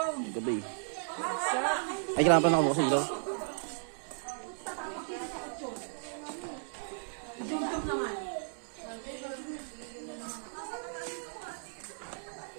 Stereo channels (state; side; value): silent; left; 55 dB below the other